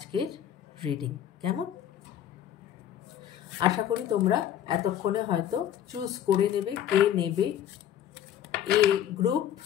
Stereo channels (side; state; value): right; quieter; 10.5 dB